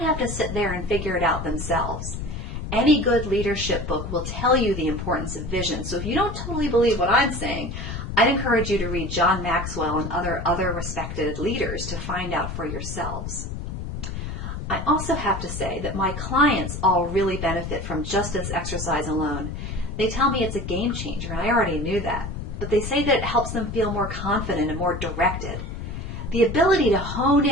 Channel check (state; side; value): noise; left; rumble, 6 dB below the sound